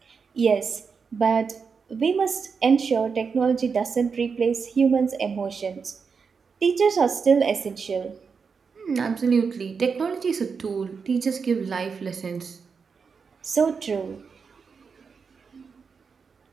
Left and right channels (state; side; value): quieter; left; 5.6 dB